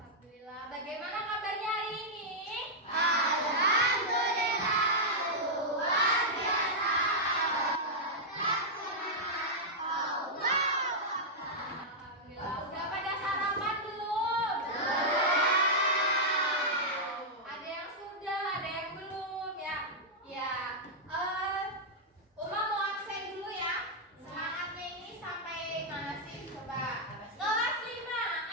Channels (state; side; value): normal; both; correlation -0.06